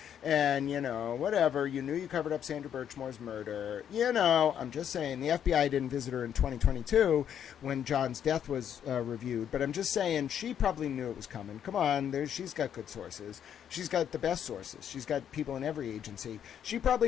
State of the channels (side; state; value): right; quieter; 9.2 dB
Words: and, whatever, you knew you covered up Sandra Birchmore's murder, I'm just saying, the FBI didn't visit her in 2022 when John's death was reviewed, but I'm just saying she probably knew it was coming. Come on, she's got good sources. She's got the best sources. She's got people in every agency. She